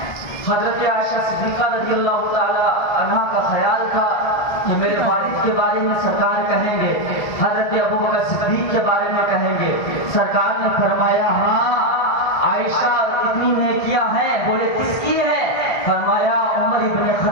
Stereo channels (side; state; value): right; late; 1.6 ms